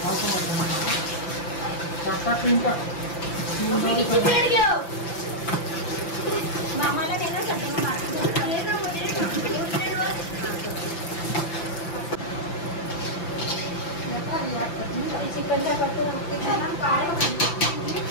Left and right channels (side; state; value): right; late; 5.9 ms